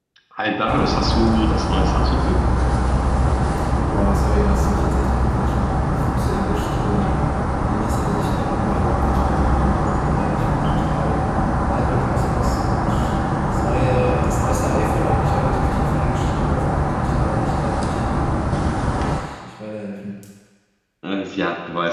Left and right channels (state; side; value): identical; both; correlation 1.00